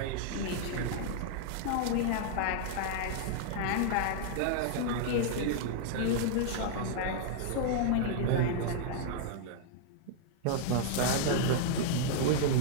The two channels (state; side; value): different; both; correlation -0.01